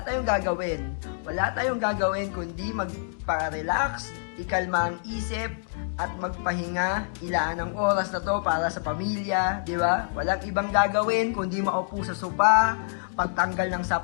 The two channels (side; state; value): right; silent; digital silence